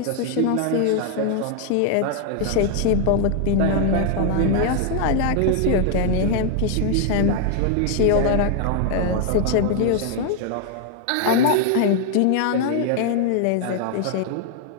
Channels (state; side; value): different; both; correlation 0.00